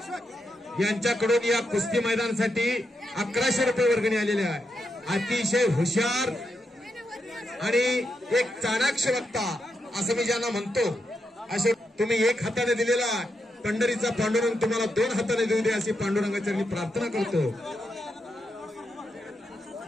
यांच्याकडून या कुस्ती मैदानासाठी 1100 रुपये वर्गणी आलेले आहे. अतिशय हुशार आणि एक चाणाक्ष वक्ता असं मी ज्यांना म्हणतो असे तुम्ही एक हाताने दिलेला पंढरीचा पांडुरंग तुम्हाला 2 हाताने देऊ दे अशी पांडुरंगाची प्रार्थना करतो.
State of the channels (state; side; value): normal; both; correlation 0.84